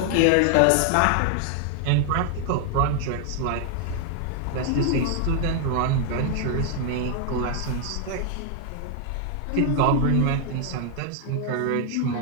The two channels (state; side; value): different; both; correlation 0.00